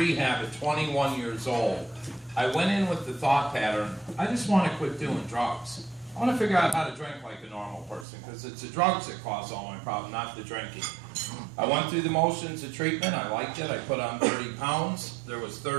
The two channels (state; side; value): drops out; left; at 8.1 s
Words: at 21 years old, I went in with the thought pattern, I just want to quit doing drugs. I want to figure out how to drink like a normal person, because it's the drugs that cause all my problem, not the drinking. I went through the motions of treatment. I liked it. I put on 30 pounds. There was